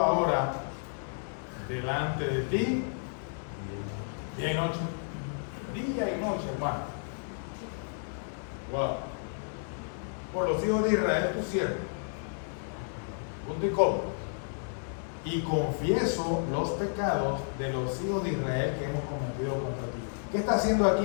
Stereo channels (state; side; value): silent; right; digital silence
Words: ahora delante de ti, día y noche. Día y noche, hermano. Wow. Por los hijos de Israel, tu siervo. Punto y coma. Y confieso los pecados de los hijos de Israel que hemos cometido contra ti. ¿Qué está haciendo aquí